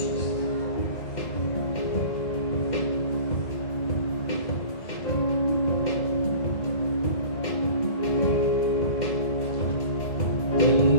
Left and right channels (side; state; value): right; late; 2.1 ms